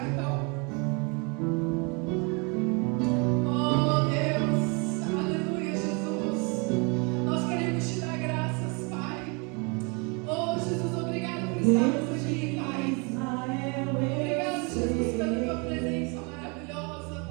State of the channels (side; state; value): left; quieter; 32.0 dB